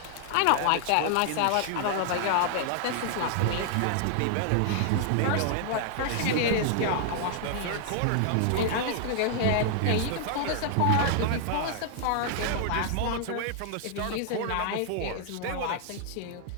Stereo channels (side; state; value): both; different; correlation -0.01